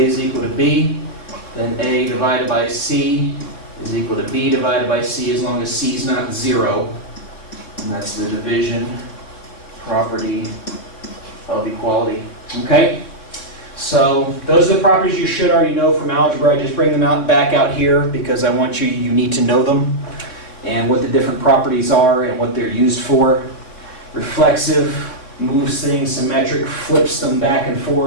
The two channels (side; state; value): right; late; 3.7 ms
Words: is equal to B, then A divided by C is equal to B divided by C as long as C is not 0. And that's the division property of equality. Okay? So those are the properties you should already know from algebra. I just bring them back out here because I want you need to know them and what the different properties are and what they're used for. Reflexive moves things, symmetric flips them back and